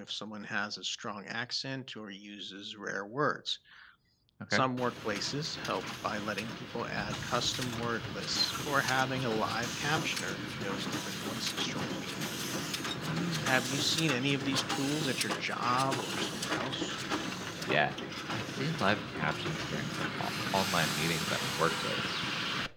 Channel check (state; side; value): identical; both; correlation 1.00